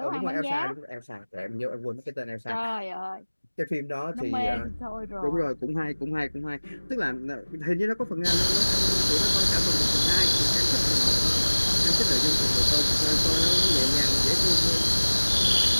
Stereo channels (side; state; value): both; inverted; correlation -1.00